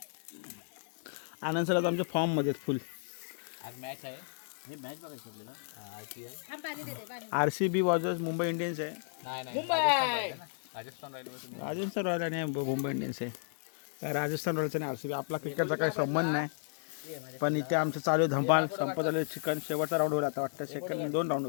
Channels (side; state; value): right; silent; digital silence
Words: आनंद सर आता आमच्या फॉर्ममध्ये फुल आज मॅच आहे. हे मॅच बघायची आपल्याला. IPL. थांब पाणी देते पाणी. RCB वर्सेस मुंबई इंडियन्स आहे. नाही मुंबई! राजस्थान राहिलो. राजस्थान रॉयल आणि मुंबई इंडियन्स आहे. काय राजस्थान रॉयल्स आणि RCB आपला क्रिकेटचा काही संबंध नाही. पण इथे आमचं चालू आहे धमाल संपत आलं चिकन. शेवटचा राऊंड होईल आता वाटतं. सेकंड 2 राऊंड